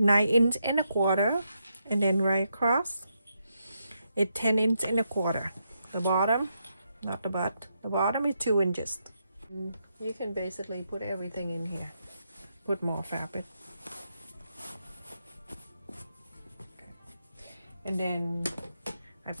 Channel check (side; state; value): both; inverted; correlation -0.82